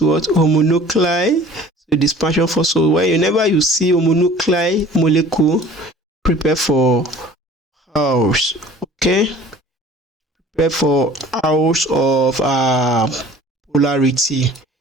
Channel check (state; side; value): normal; both; correlation 0.47